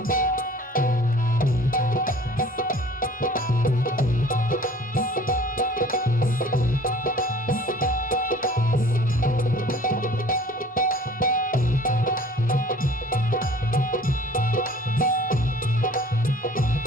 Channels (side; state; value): both; normal; correlation 0.49